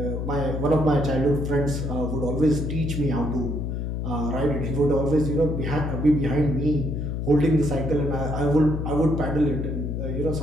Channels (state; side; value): noise; left; hum, 2 dB below the sound